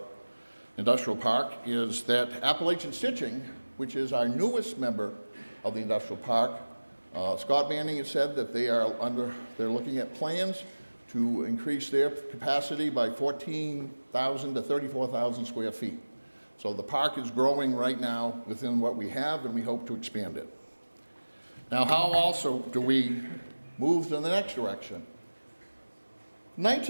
industrial park is that Appalachian Stitching, which is our newest member of the industrial park, Scott Manning has said that they're looking at plans to increase their capacity by 14,000 to 34,000 square feet. So the park is growing right now within what we have, and we hope to expand it. Now, how also do we move to the next direction?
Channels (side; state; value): both; inverted; correlation -1.00